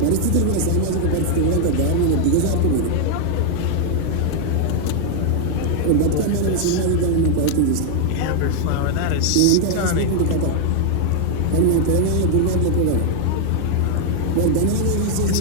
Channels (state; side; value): different; both; correlation 0.00